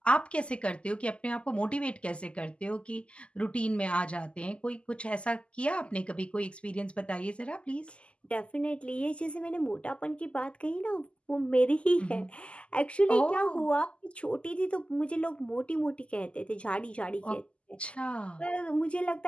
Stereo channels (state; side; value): late; right; 0.054 ms